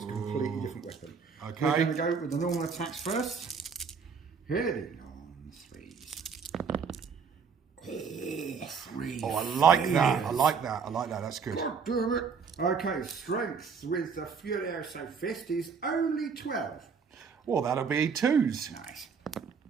a completely different weapon. Okay. We're going to go with the normal attacks first. Heading on 3s. Oh, 3. Oh, I like that. I like that. I like that. That's good. God damn it. Okay, strength with the Furioso Fist is only 12. Well, that'll be 2s. Nice.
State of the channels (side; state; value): left; quieter; 5.8 dB